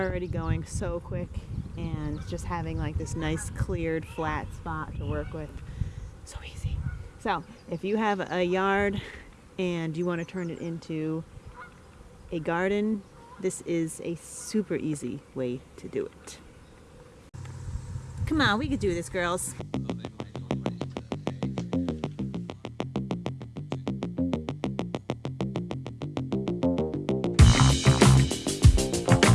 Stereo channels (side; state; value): both; identical; correlation 1.00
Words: going so quick, and just having like this nice cleared flat spot to work with, so easy. So if you have a yard and you want to turn it into a garden, this is a super easy way to do it. Come on, we could do this, girls.